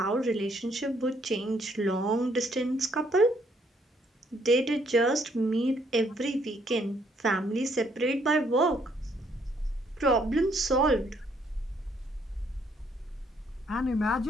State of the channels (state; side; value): normal; both; correlation 0.68